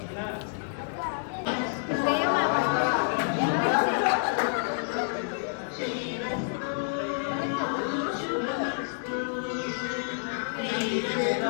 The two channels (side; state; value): right; silent; 59 dB below the other